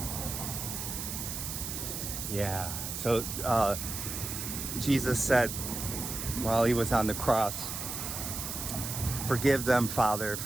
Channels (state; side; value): noise; right; hiss, 5 dB below the sound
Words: Yeah. So Jesus said while he was on the cross, "Forgive them, Father,